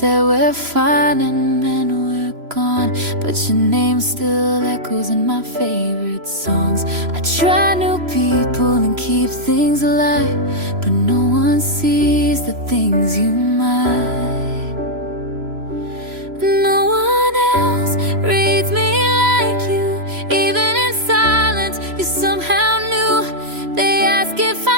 we're fine and then we're gone, but your name still echoes in my favorite songs. I try new people and keep things alive, but no one sees the things you might. No one else reads me like you. Even in silence, you somehow knew. They ask if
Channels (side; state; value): left; late; 3.0 ms